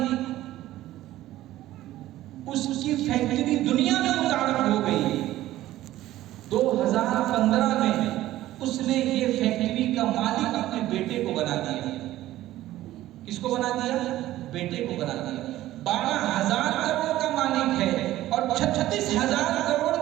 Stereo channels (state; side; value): quieter; left; 14.9 dB